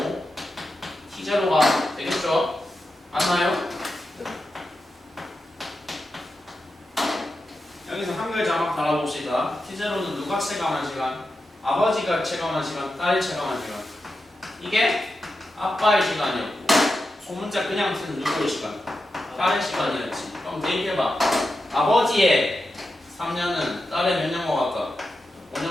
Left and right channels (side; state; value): both; normal; correlation 0.89